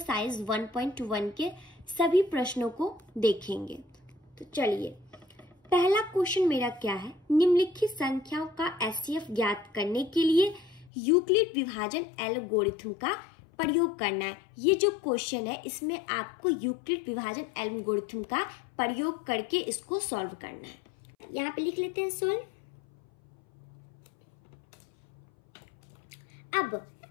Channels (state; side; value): drops out; right; at 10.9 s